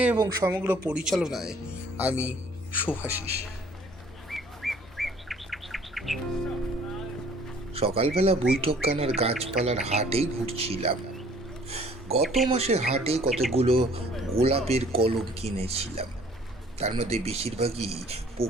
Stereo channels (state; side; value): normal; both; correlation 0.56